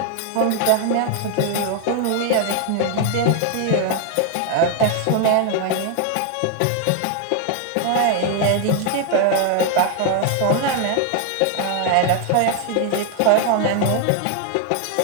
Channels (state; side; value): different; both; correlation 0.00